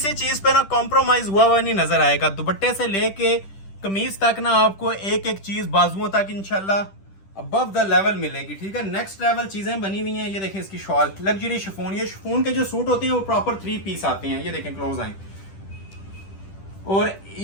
चीज पे ना कॉम्प्रोमाइज हुआ नहीं नजर आएगा। दुपट्टे से लेके कमीज तक ना आपको एक एक चीज बाजुओं तक इंशाल्लाह अबव द लेवल मिलेगी, ठीक है। नेक्स्ट लेवल चीजें बनी हुई हैं। ये देखें इसकी शॉल, लग्जरी शिफॉन। ये शिफॉन के जो सूट होते हैं वो प्रॉपर 3 पीस आते हैं। ये देखें क्लोज आए। और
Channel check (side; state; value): right; late; 10 ms